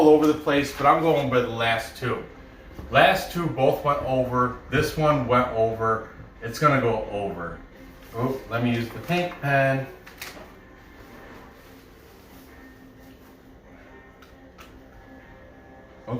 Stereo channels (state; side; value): identical; both; correlation 1.00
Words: over the place, but I'm going by the last 2. Last 2 both went over. This one went over. It's gonna go over. Oh, let me use the pink pen.